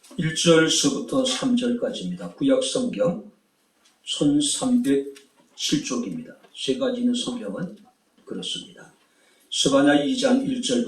1절서부터 3절까지입니다. 구약성경 1307쪽입니다. 세 가지 있는 성경은 그렇습니다. 스바냐 2장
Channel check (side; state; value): both; identical; correlation 1.00